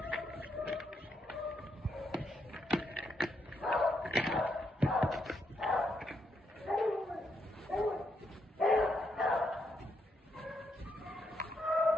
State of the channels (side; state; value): both; normal; correlation 0.78